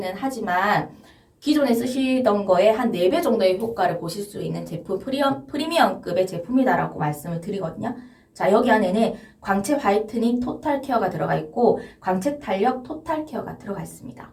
하지만 기존에 쓰시던 거에 한 4배 정도의 효과를 보실 수 있는 제품, 프리미엄급의 제품이다라고 말씀을 드리거든요. 자, 여기 안에는 광채 화이트닝 토탈 케어가 들어가 있고 광채 탄력 토탈 케어가 들어가 있습니다.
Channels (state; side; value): identical; both; correlation 1.00